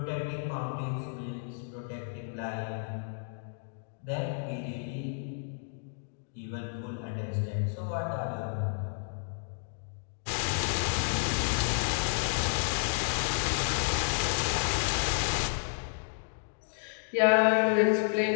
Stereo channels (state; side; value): silent; right; digital silence